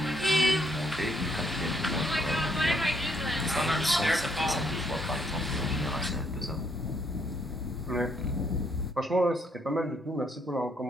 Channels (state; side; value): normal; both; correlation 0.71